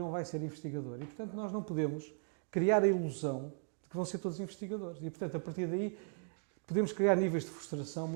vai ser investigador e, portanto, nós não podemos criar a ilusão de que vão ser todos investigadores e, portanto, a partir daí podemos criar níveis de frustração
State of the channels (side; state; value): left; silent; 53 dB below the other